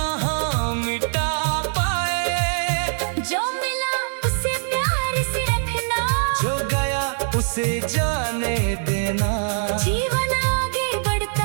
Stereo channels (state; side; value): silent; left; digital silence